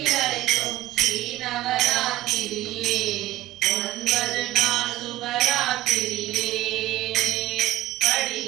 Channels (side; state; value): left; quieter; 15.7 dB